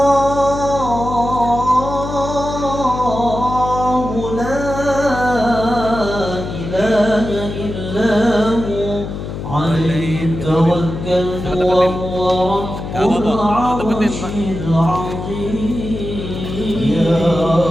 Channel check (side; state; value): left; noise; hum, 7 dB below the sound